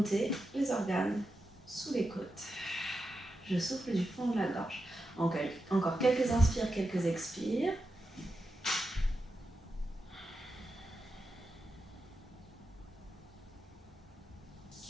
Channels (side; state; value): both; normal; correlation 0.88